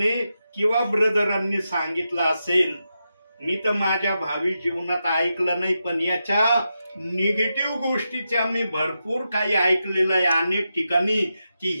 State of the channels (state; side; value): inverted; both; correlation -0.88